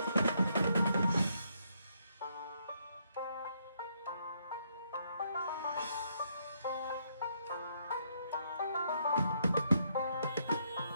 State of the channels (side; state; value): both; inverted; correlation -0.74